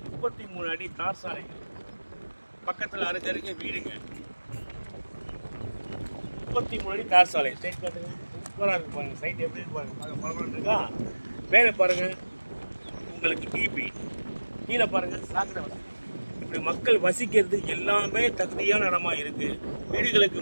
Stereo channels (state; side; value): inverted; both; correlation -1.00